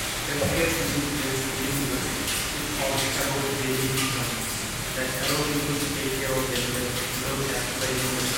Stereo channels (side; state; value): both; identical; correlation 1.00